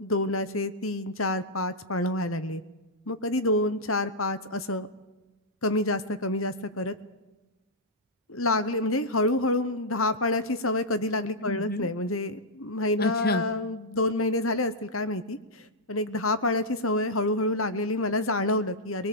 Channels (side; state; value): both; normal; correlation -0.08